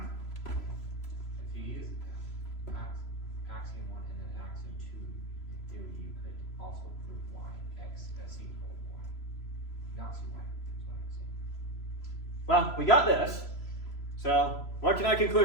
If you use axiom 1 and then axiom 2, in theory you could also prove y, x, c equals y. Not c y, is what I'm saying. Well, we got this. So, what can I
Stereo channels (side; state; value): right; late; 3.0 ms